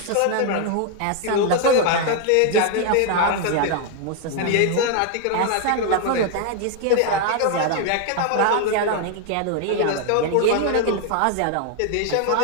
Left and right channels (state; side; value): different; both; correlation 0.00